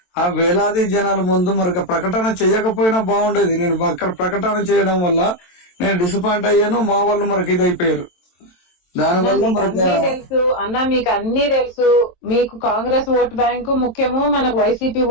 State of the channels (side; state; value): right; late; 23 ms